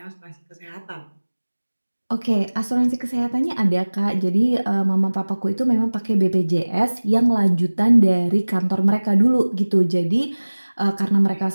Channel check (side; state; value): both; inverted; correlation -1.00